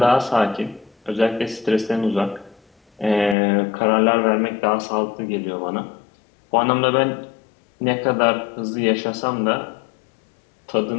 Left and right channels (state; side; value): drops out; right; at 3.4 s